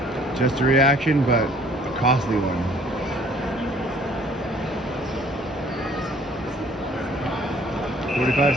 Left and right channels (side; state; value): both; normal; correlation 0.57